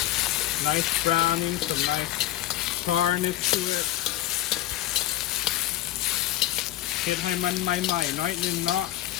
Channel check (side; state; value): right; quieter; 14.2 dB